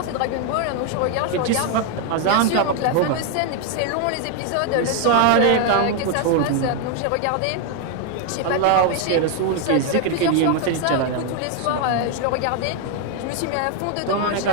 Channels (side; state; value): both; different; correlation 0.01